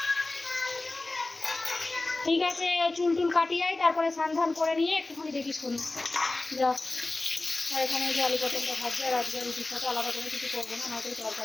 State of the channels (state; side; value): quieter; right; 3.1 dB